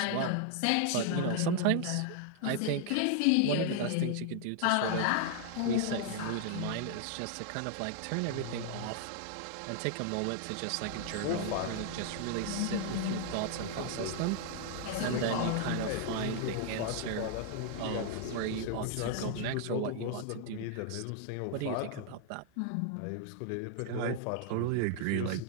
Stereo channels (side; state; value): both; different; correlation 0.00